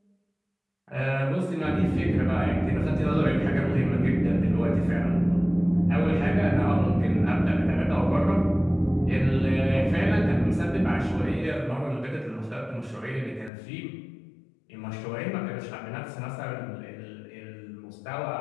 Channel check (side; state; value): right; drops out; at 13.5 s